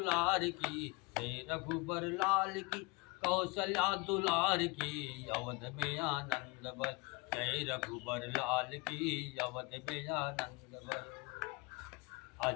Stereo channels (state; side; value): quieter; right; 27.4 dB